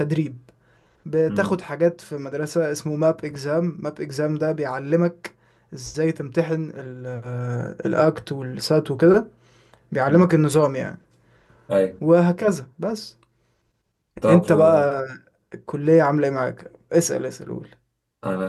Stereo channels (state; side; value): identical; both; correlation 1.00